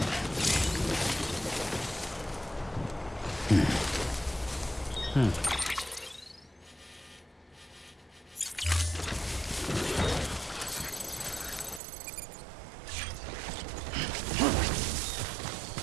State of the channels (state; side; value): drops out; left; at 11.8 s